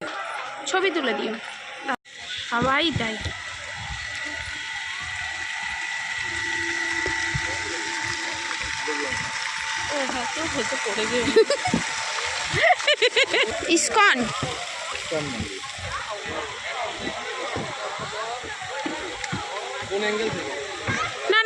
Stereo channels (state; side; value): identical; both; correlation 1.00